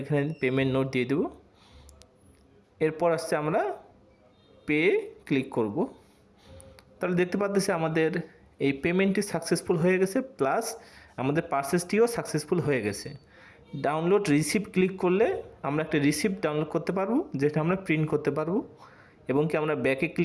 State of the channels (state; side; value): identical; both; correlation 1.00